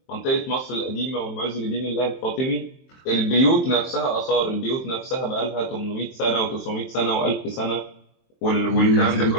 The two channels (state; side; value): late; right; 23 ms